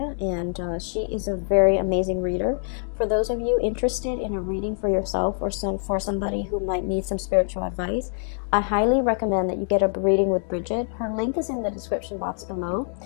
and she is a very amazing reader. For those of you interested in a reading for yourself or for somebody who might need some spiritual advice, I highly recommend that you get a reading with Bridget. Her link is in the description box below.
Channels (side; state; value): right; silent; 62 dB below the other